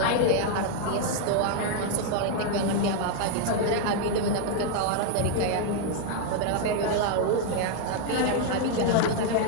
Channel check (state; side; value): different; both; correlation 0.00